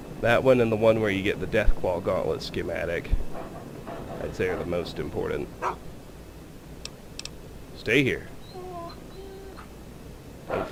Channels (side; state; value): both; identical; correlation 1.00